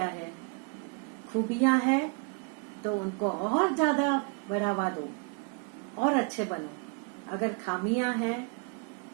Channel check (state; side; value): quieter; left; 32.2 dB